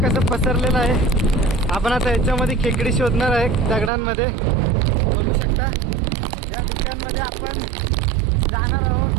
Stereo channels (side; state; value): left; drops out; at 3.9 s